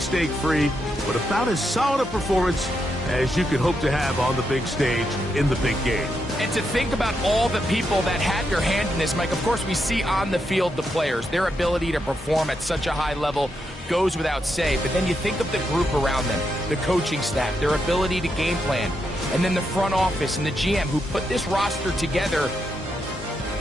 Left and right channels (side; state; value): both; normal; correlation 0.82